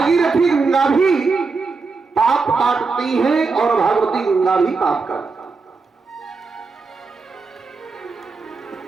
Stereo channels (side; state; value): left; quieter; 4.4 dB